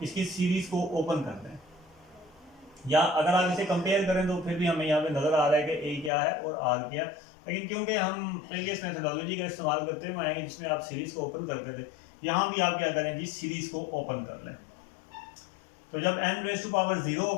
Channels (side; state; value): right; drops out; at 6.1 s